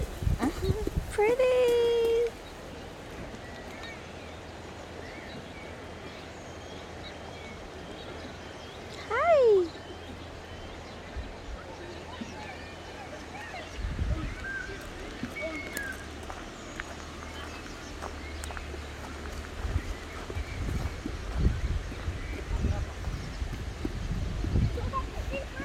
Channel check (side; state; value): both; identical; correlation 1.00